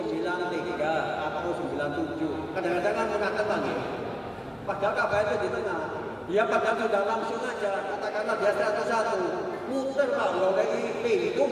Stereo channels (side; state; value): both; identical; correlation 1.00